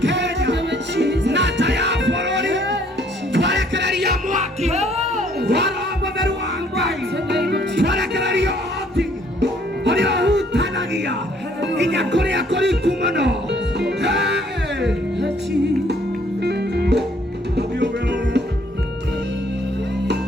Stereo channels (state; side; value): normal; both; correlation 0.63